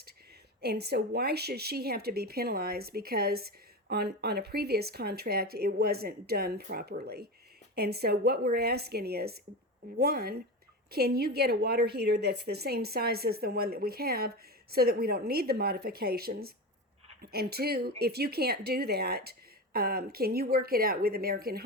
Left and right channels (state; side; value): normal; both; correlation 0.23